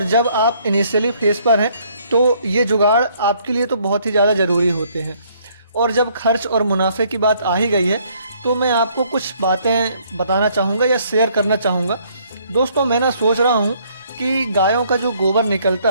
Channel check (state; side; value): inverted; both; correlation -0.65